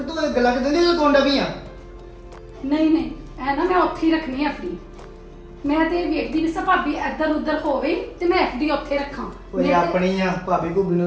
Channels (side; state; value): both; identical; correlation 1.00